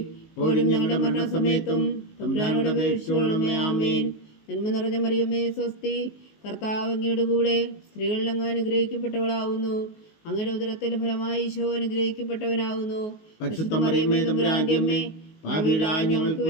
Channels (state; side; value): late; right; 19 ms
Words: ഇപ്പോഴും ഞങ്ങളുടെ മരണസമയത്തും തമ്പുരാനോട് അപേക്ഷിച്ചുകൊള്ളണമേ. ആമേൻ. നന്മ നിറഞ്ഞ മറിയമേ സ്വസ്തി, കർത്താവ് അങ്ങയുടെ കൂടെ സ്ത്രീകളിൽ അങ്ങ് അനുഗ്രഹിക്കപ്പെട്ടവളാവുന്നു. അങ്ങയുടെ ഉദരത്തിൽ ഫലമായി ഈശോ അനുഗ്രഹിക്കപ്പെട്ടവനാവുന്നു. പരിശുദ്ധ മറിയമേ തമ്പുരാന്റെ അമ്മേ, പാപികളായ ഞങ്ങൾക്ക്